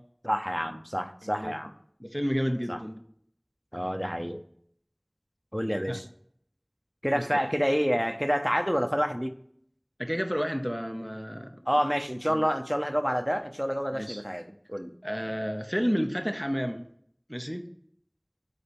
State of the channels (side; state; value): both; identical; correlation 1.00